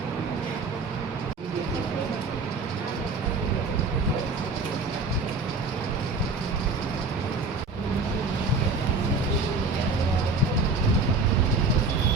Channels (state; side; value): quieter; left; 3.6 dB